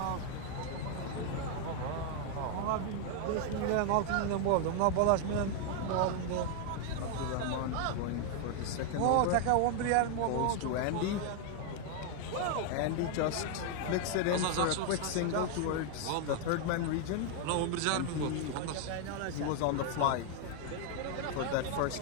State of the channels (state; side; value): different; both; correlation 0.00